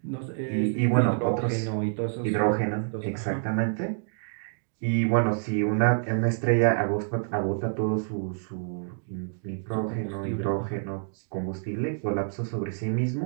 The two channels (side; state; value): left; silent; digital silence